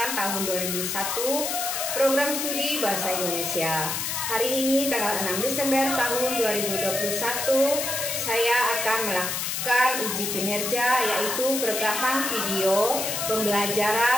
tahun 2001 Program Studi Bahasa Indonesia. Hari ini tanggal 6 Desember tahun 2021 saya akan melakukan uji kinerja, yaitu perekaman video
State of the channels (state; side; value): noise; left; hiss, 2 dB below the sound